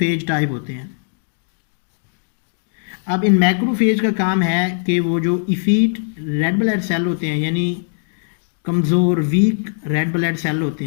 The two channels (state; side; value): silent; right; digital silence